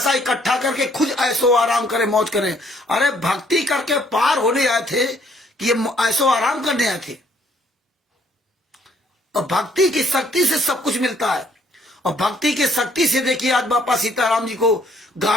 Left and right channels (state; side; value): normal; both; correlation 0.64